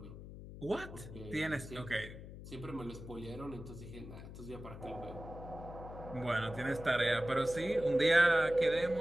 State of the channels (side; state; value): left; noise; hum, 13 dB below the sound